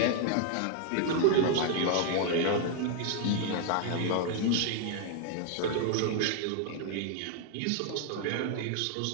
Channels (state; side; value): different; both; correlation 0.00